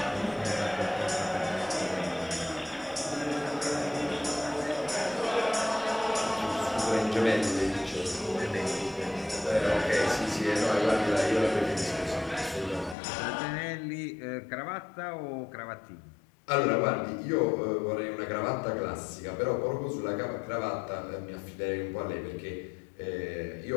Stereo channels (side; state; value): right; drops out; at 13.0 s